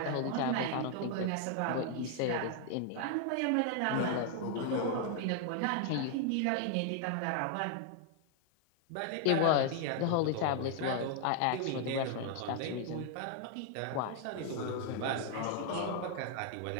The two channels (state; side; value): different; both; correlation 0.00